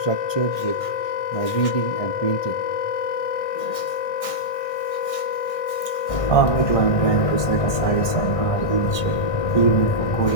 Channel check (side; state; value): right; late; 1.6 ms